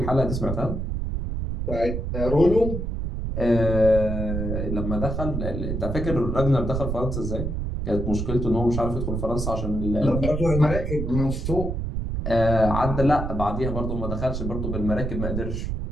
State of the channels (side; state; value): right; noise; rumble, 3 dB below the sound